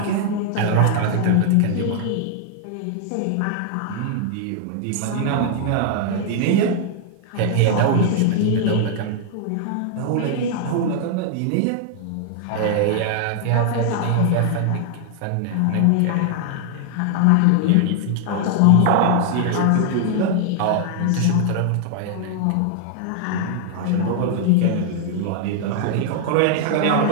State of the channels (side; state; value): both; different; correlation 0.00